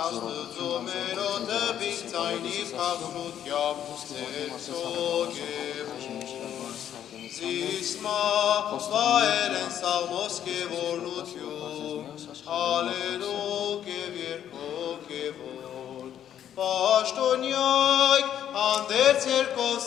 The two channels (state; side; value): quieter; right; 10.2 dB